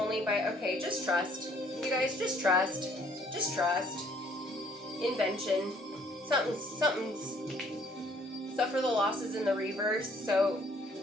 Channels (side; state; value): both; normal; correlation 0.61